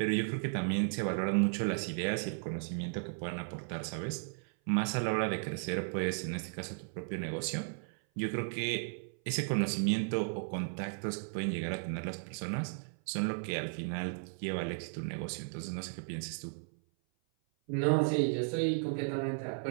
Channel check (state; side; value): silent; left; 54 dB below the other